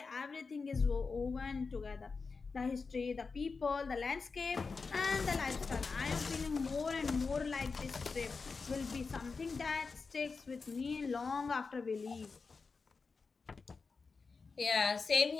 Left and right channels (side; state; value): right; quieter; 4.6 dB